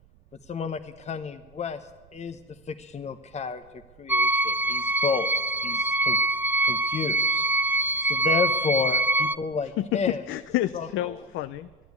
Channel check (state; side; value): noise; right; rumble, 29 dB below the sound